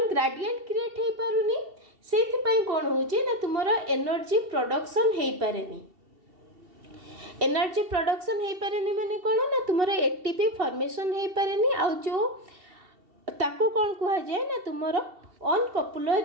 ग्रेडिएंट क्रिएट हे पारुनी सेथि पई कौन होचे ना तुमर एनर्जी प्रोडक्शन हे पारेनी एनर्जी प्रोडक्शन हे पारेनी माने कौन ना तुमर एटीपी फॉर्मेशन हे पारेनी आ जो ताको कौन कहा जाए ना तुमर ऑन कपुलर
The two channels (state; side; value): late; left; 2.7 ms